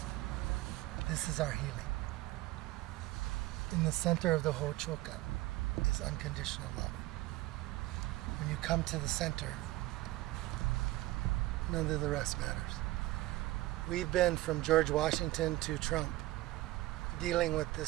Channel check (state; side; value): quieter; left; 18.1 dB